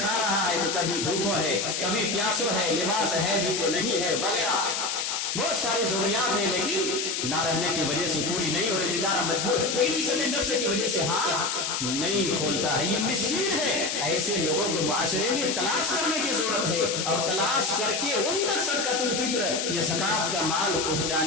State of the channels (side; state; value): left; noise; hiss, 1 dB below the sound